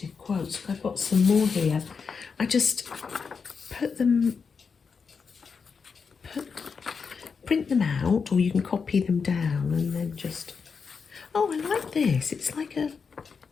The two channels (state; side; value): quieter; right; 5.6 dB